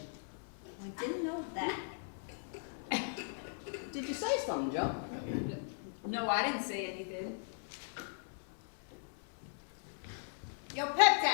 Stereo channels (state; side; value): silent; right; digital silence